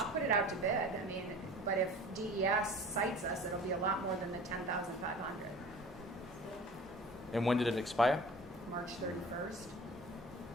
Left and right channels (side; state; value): both; normal; correlation 0.42